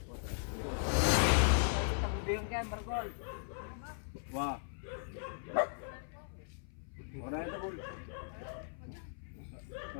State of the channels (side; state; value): right; silent; 53 dB below the other